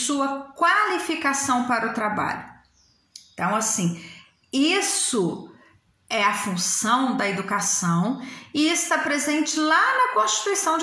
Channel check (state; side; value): identical; both; correlation 1.00